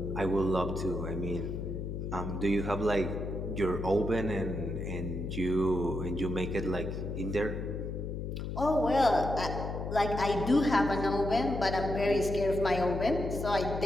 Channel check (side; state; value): left; noise; hum, 5 dB below the sound